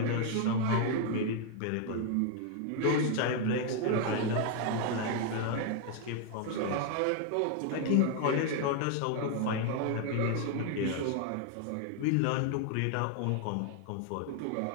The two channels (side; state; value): both; different; correlation 0.00